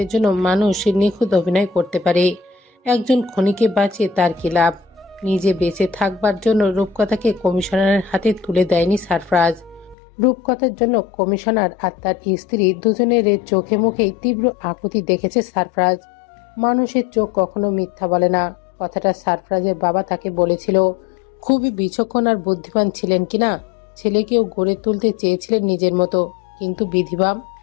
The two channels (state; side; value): drops out; right; at 10.0 s